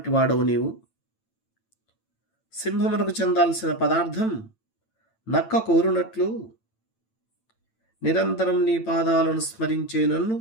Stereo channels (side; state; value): right; late; 8.9 ms